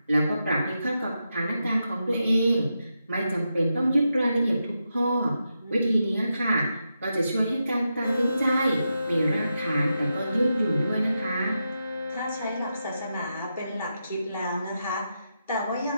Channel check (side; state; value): both; inverted; correlation -0.87